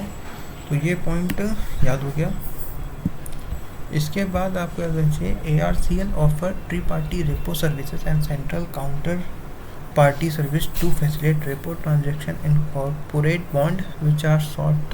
तो ये पॉइंट याद हो गया। इसके बाद आपको याद रखना चाहिए ARCL offer tri party repo services and central counter party service to facilitate repo transaction in corporate bond which are short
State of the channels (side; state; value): both; identical; correlation 1.00